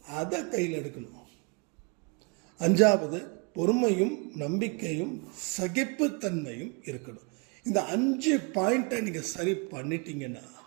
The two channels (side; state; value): left; quieter; 32.6 dB